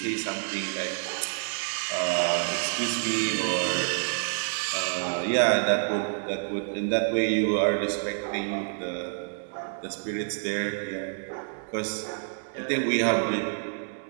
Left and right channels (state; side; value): silent; left; digital silence